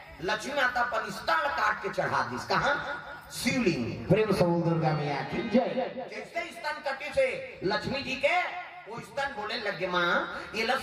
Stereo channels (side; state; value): both; identical; correlation 1.00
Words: लक्ष्मी माता अपन स्तन काट के चढ़ा दी। कहां? शिवलिंग। प्रेम से बोल दुर्गा मैया की जय। जैसे स्तन कटे से लक्ष्मी जी के वो स्तन बोले लगे माँ ये